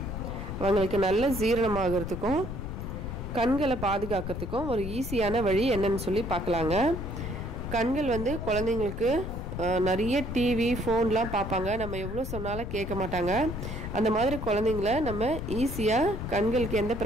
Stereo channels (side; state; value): left; noise; rumble, 6 dB below the sound